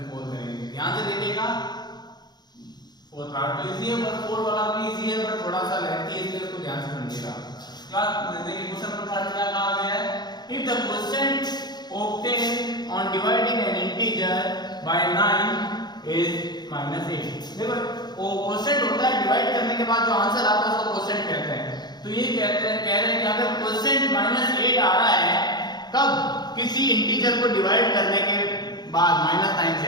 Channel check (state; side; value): late; right; 0.20 ms